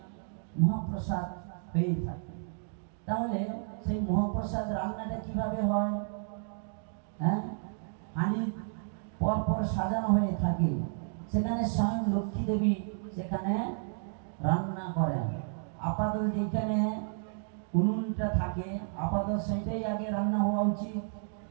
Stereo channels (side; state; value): left; silent; digital silence